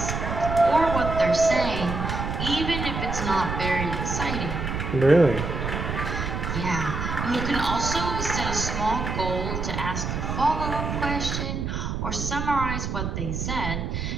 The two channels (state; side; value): noise; right; rumble, 3 dB below the sound